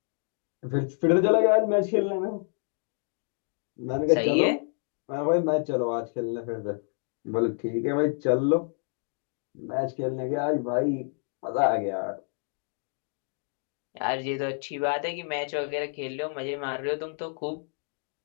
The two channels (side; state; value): right; silent; 57 dB below the other